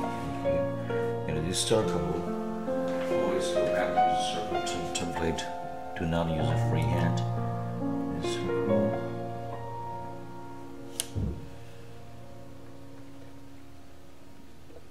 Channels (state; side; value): identical; both; correlation 1.00